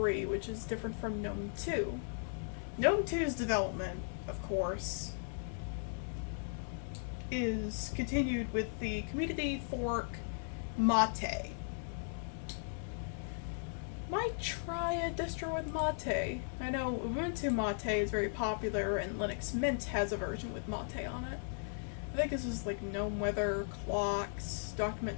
which is different from GNOME 2. GNOME 2's development, of course, is continued with the community fork Mate. Might try a distro with Mate. I know Ubuntu Mate is very popular, and Linux Mint has a version with Mate on it. I think this is like GNOME Weather, clocks, document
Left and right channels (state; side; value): silent; right; digital silence